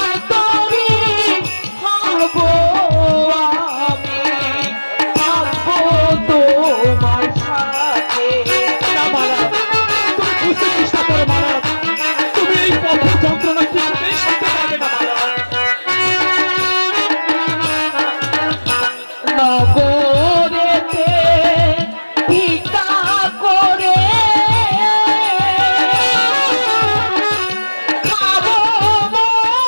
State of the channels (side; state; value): both; inverted; correlation -1.00